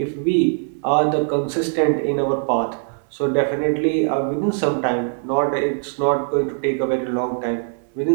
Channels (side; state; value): left; silent; 59 dB below the other